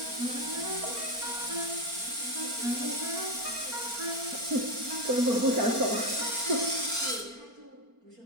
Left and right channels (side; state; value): left; late; 4.3 ms